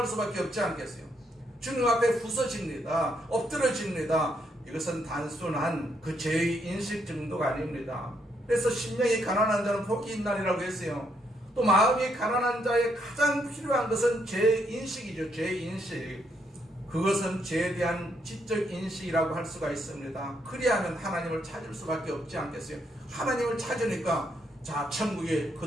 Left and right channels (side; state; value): both; normal; correlation 0.75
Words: 수밖에 없지 않겠어요? 주님 앞에 부서집니다. 엎드러집니다. 이것은 단순한 그 죄의 인식 정도가 아닙니다. 그래서 심령이 가난한 자는 복이 있나니라고 했어요. 또 마음이 가난한 자의 가장 필요한 것은 죄인식이죠. 죄인식. 그것은 죄에 대한 지적 인식이라고 할 수가 있습니다. 그리하면 하나님을 찾을 수밖에 없지 않겠어요? 하나님을 찾으니까 자, 천국이